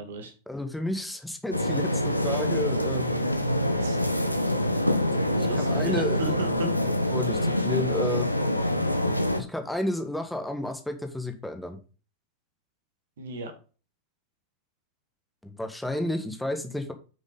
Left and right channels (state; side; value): inverted; both; correlation -0.45